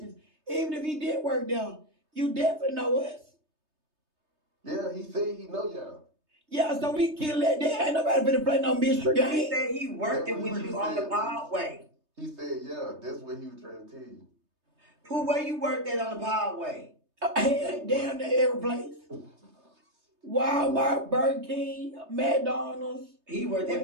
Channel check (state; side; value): late; left; 3.3 ms